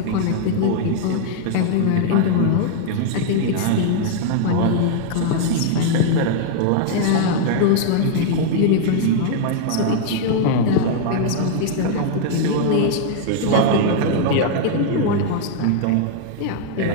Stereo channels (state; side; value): different; both; correlation -0.01